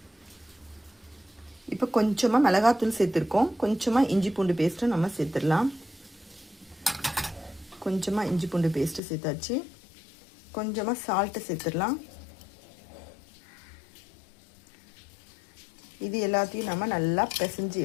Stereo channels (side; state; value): right; drops out; at 9.0 s